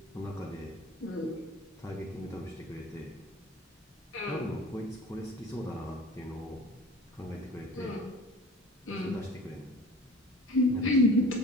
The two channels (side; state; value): both; normal; correlation 0.41